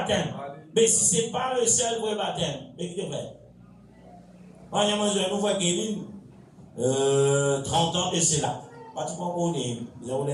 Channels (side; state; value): both; identical; correlation 1.00